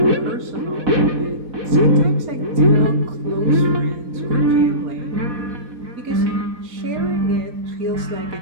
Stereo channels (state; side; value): late; left; 4.3 ms